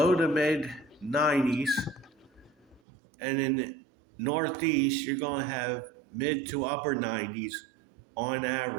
to mid 90s. And in the Northeast, you're going to have mid to upper 90s on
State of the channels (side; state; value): left; drops out; at 2.8 s